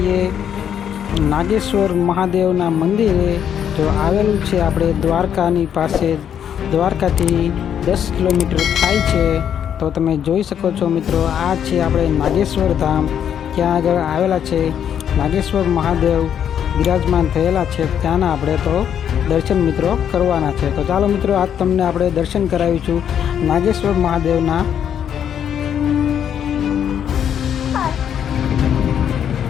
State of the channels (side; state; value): right; quieter; 9.0 dB